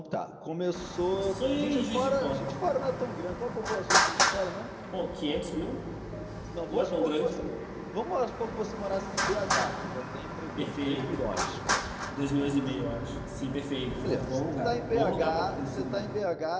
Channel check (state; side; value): identical; both; correlation 1.00